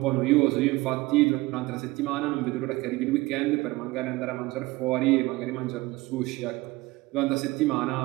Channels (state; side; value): quieter; left; 20.8 dB